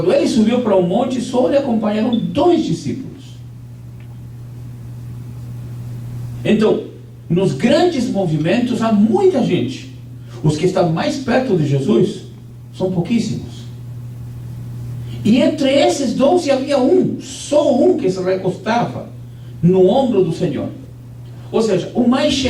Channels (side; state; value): both; identical; correlation 1.00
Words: ele subiu para um monte, só lhe acompanharam 2 discípulos. Então, nos grandes movimentos há muita gente. Os que estão mais perto de Jesus são pouquíssimos. E entre esses 12 havia só um que se recostava no ombro do Senhor. Ou seja, o mais